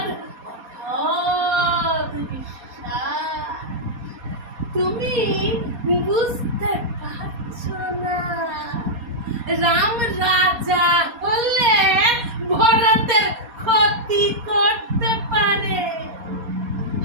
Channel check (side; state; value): left; late; 4.2 ms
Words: অগাধ বিশ্বাস। তুমি বুঝতে পারছো না, রাম রাজা হলে ভরতের ক্ষতি করতে পারে।